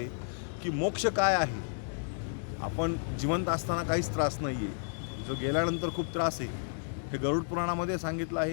की मोक्ष काय आहे. आपण जिवंत असताना काहीच त्रास नाही आहे, जो गेल्यानंतर खूप त्रास आहे. हे गरुड पुराणामध्ये सांगितलं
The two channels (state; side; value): silent; right; digital silence